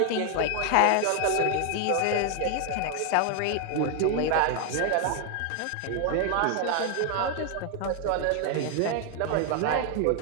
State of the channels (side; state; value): both; different; correlation 0.00